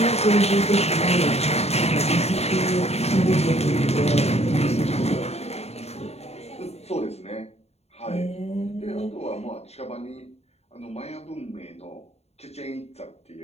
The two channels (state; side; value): late; right; 0.30 ms